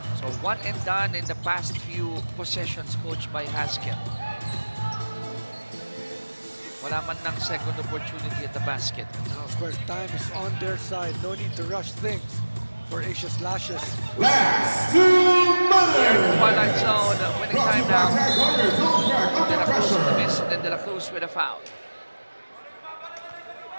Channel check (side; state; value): both; inverted; correlation -1.00